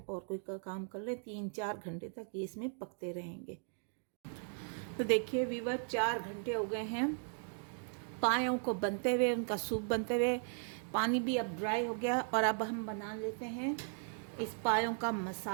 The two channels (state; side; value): silent; left; 53 dB below the other